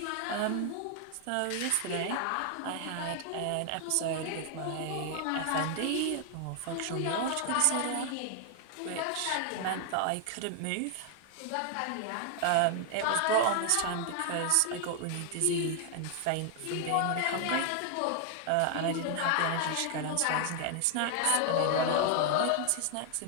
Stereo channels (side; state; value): both; different; correlation 0.00